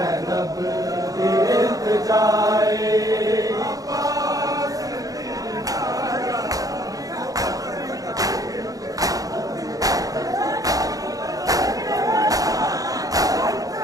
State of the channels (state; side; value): late; left; 0.17 ms